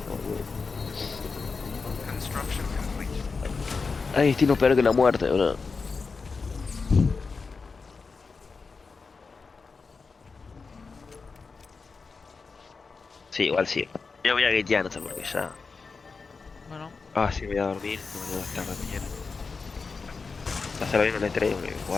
boludo. Construction complete. Hay destino peor que la muerte, bro. Sí, igual sí. Yo voy a gatear, no sé por qué ya. Bueno, Ah, sí, voy a dormir. No me voy a estar de mañana. Hacerlo bien en el E3 porque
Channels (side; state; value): right; quieter; 4.6 dB